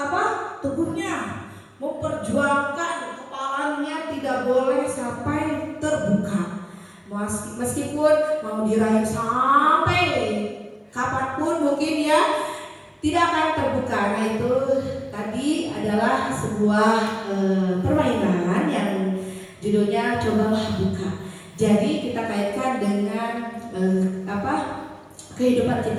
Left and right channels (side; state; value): both; identical; correlation 1.00